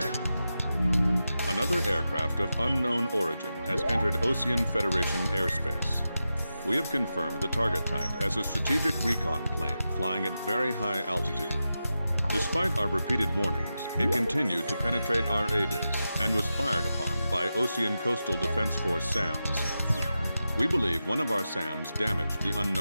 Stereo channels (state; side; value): inverted; both; correlation -0.91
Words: Another aircraft of unknown origin has entered Ocean Federation airspace. We have confirmed the target type as a strategic recon plane flying at very high altitude. Despite our repeated warnings, it continued to penetrate our ADIS and was fired upon by Ocean Coastal Defense Force SAMs. We believe one of our SAMs damaged the